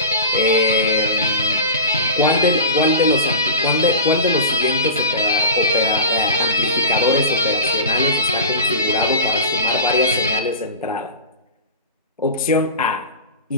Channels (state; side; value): inverted; both; correlation -0.31